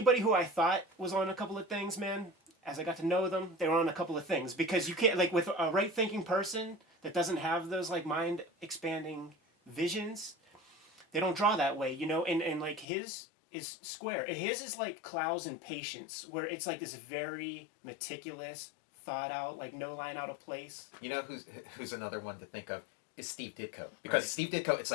who I thought was on a couple of things, man, as I got to know them, they were on a couple of things, because you can't, like, with a right thinking person that doesn't have those like mind expanding visions, they don't draw that way, you know, and like his is square. His is like Clowes and Patience, where it's like this very meticulous, thought out, like no line out of place. You know who's another one to think of is Steve Ditko, because Steve Ditko, it's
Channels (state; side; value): drops out; right; at 12.9 s